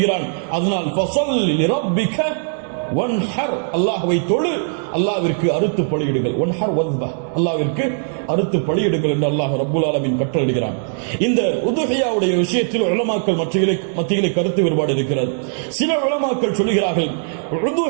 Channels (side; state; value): left; silent; digital silence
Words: அதனால் ஃபஸல்லி லிரப்பிக வன்ஹர், அல்லாஹ்வை தொழு, அல்லாஹ்விற்கு அறுத்து பலியிடுங்கள். வன்ஹர் வஸ்பஹ், அல்லாஹ்விற்கு அறுத்து பலியிடுங்கள் என்று அல்லாஹ் ரப்புல் ஆலமீன் கட்டளையிடுகிறான். இந்த உதுஹியாவுடைய விஷயத்தில் உலமாக்கள் மத்தியிலே கருத்து வேறுபாடு இருக்கிறது. சில உலமாக்கள் சொல்கிறார்கள்,